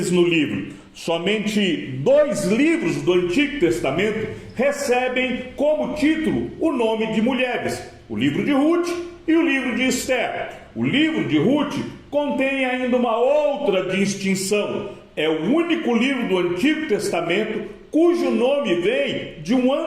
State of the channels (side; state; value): both; identical; correlation 1.00